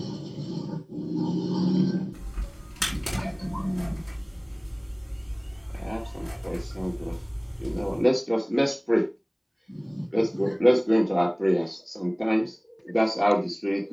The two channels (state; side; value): identical; both; correlation 1.00